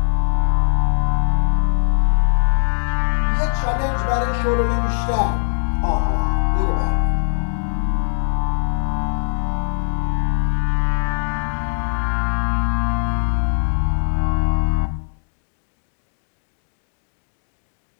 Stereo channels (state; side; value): silent; right; digital silence